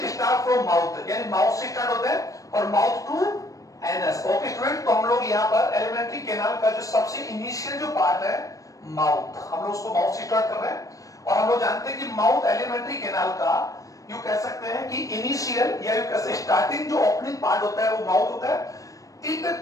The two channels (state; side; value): late; right; 0.16 ms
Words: स्टार्ट फ्रॉम माउथ, यानी माउथ से स्टार्ट होता है और mouth to anus. Okay student, तो हम लोग यहाँ पर एलिमेंट्री कैनाल का जो सबसे इनिशियल जो पार्ट है माउथ, हम लोग उसको माउथ से स्टार्ट कर रहे हैं। और हम लोग जानते हैं कि माउथ एलिमेंट्री कैनाल का यू कह सकते हैं कि इनिशियल या यू कह सकते स्टार्टिंग जो ओपनिंग पार्ट होता है वो माउथ होता है। इट